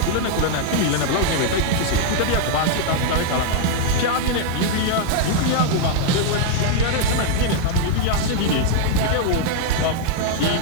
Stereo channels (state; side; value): different; both; correlation 0.00